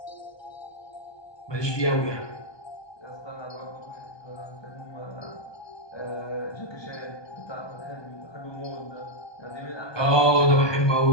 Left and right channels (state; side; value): late; right; 1.2 ms